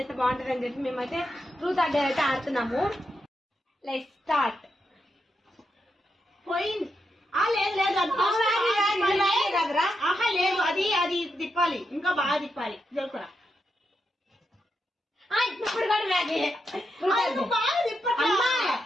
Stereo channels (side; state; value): both; normal; correlation 0.84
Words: బాగుంటుంది అని చెప్పి మేమైతే ట్రూత్ ఆర్ డేర్ అయితే ఆడుతున్నాము. Let's start. పోయింది. లేదు లేదు, అది అది తిప్పాలి, ఇంకా బాగా తిప్పాలి. జరుపురా ఇప్పుడు కూడా మ్యాగీ బాగా తిప్పమ్మా,